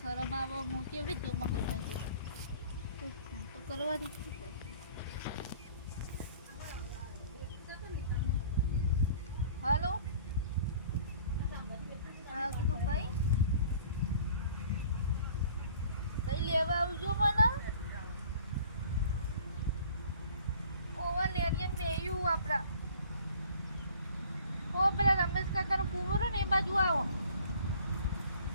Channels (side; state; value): both; inverted; correlation -0.51